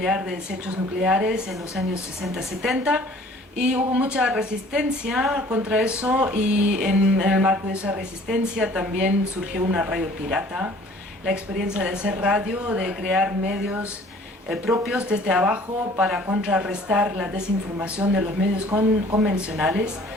de desechos nucleares en los años 60-70, y hubo mucha resistencia contra eso, y en el marco de esa resistencia también surgió una radio pirata, la experiencia de hacer radio, de crear medios propios desde abajo para contrarrestar la desinformación de los medios convencionales.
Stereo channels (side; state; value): both; normal; correlation 0.52